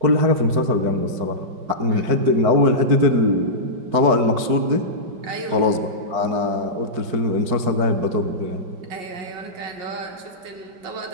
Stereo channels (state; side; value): late; left; 4.7 ms